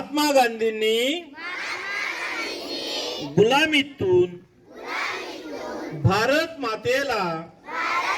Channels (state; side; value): identical; both; correlation 1.00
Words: गांधींनी गुलामीतून भारत मातेला